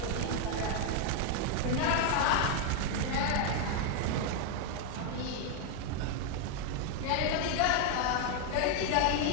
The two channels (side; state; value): both; different; correlation 0.01